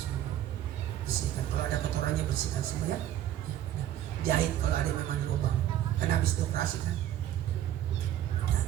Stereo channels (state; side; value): quieter; left; 11.9 dB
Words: Bersihkan. Kalau ada kotorannya bersihkan semua ya. Jahit kalau ada memang lubang. Karena habis operasi kan. Ya.